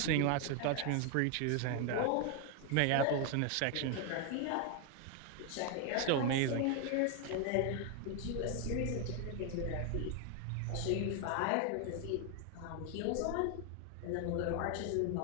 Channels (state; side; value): different; both; correlation 0.01